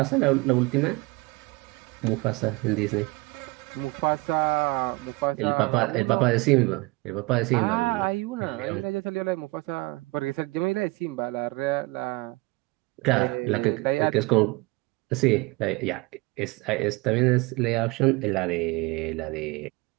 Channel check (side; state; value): left; quieter; 24.0 dB